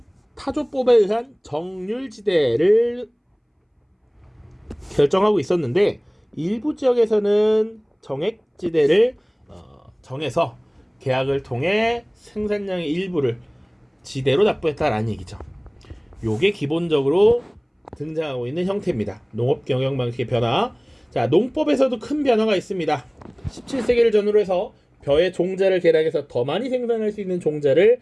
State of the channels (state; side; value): identical; both; correlation 1.00